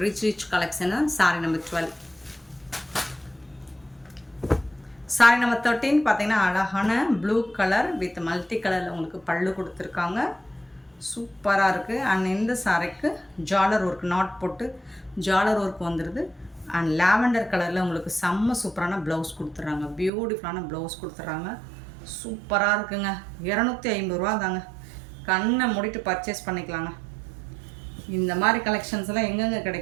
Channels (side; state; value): left; drops out; at 20.1 s